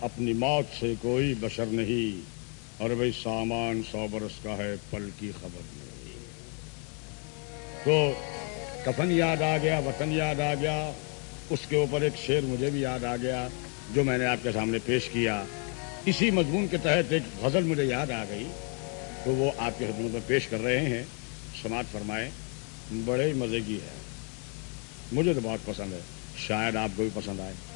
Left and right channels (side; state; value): right; quieter; 38.9 dB